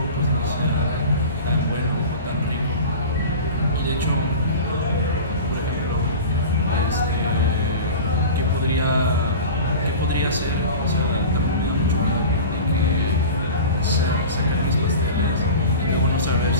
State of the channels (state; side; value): inverted; both; correlation -0.35